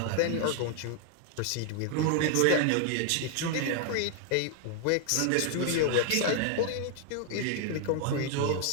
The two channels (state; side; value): different; both; correlation 0.00